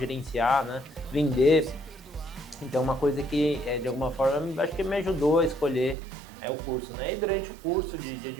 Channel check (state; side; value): drops out; left; at 6.0 s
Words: né? Vender. Então, uma coisa que, de alguma forma, acho que me ajudou a escolher o curso, né? E durante o curso de